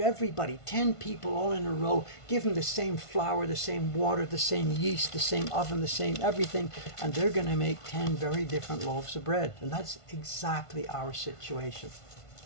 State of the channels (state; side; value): late; right; 1.5 ms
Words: everybody, 10 people all in a row, give them the same flour, the same water, the same yeast, the same oven, the same everything, and they're going to make 10 very different loaves of bread. And that's exactly our situation.